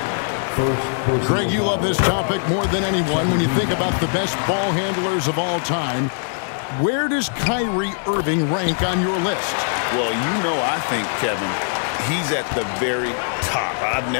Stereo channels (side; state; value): right; silent; digital silence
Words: Greg, you love this topic more than anyone when you think about the best ball handlers of all time. Where does Kyrie Irving rank on your list? Well, you know, I think, Kevin, he's at the very top. I've